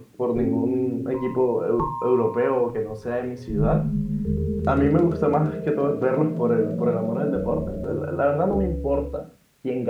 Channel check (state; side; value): identical; both; correlation 1.00